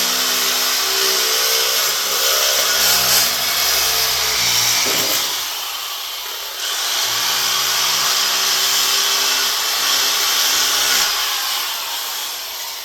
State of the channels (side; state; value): both; identical; correlation 1.00